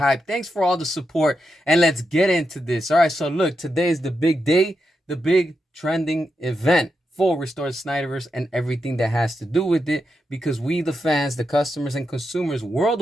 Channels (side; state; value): both; normal; correlation 0.86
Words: Thanks for all the support, and let's get into this. All right, so look, today is the big day, the big trending event for Restore Snyderverse and everything that has to do with it, because we, the fans, the customers, and consumers